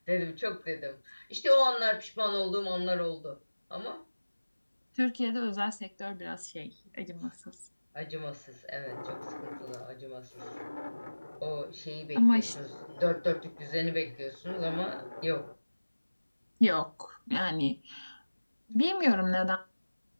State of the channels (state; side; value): inverted; both; correlation -1.00